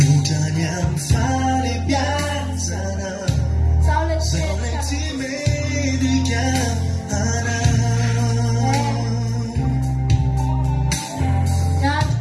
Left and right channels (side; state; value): both; identical; correlation 1.00